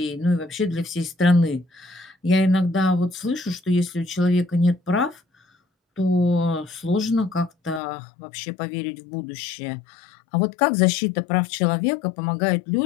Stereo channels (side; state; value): right; drops out; at 7.8 s